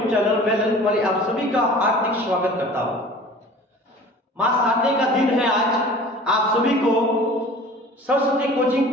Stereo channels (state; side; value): normal; both; correlation 0.43